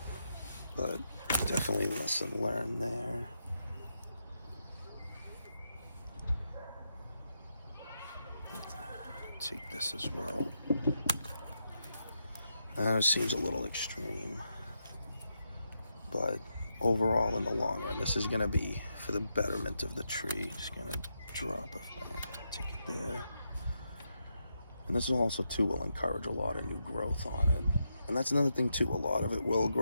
But definitely lesson learned there. Take this as well. It seems a little extreme, but overall in the long run, this is gonna be for the betterment of the tree. Just gonna drop it, take it there. And this also too will encourage a lot of new growth on it. And that's another thing too, a lot of it will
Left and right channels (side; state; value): both; inverted; correlation -0.83